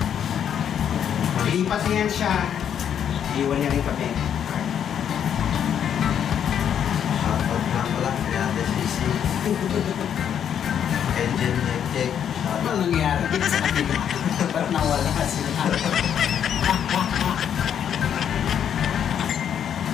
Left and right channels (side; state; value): right; quieter; 8.9 dB